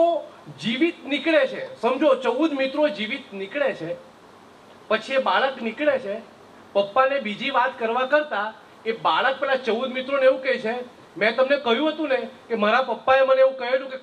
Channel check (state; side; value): identical; both; correlation 1.00